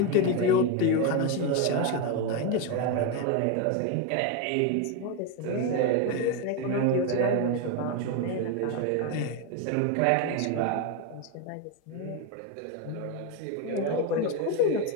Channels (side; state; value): both; different; correlation 0.02